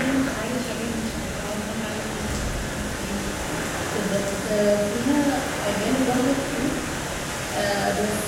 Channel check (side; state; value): both; identical; correlation 1.00